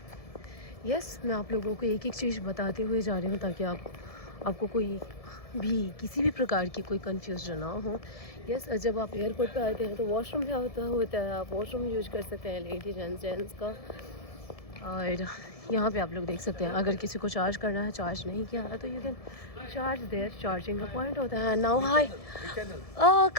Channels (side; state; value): right; late; 1.7 ms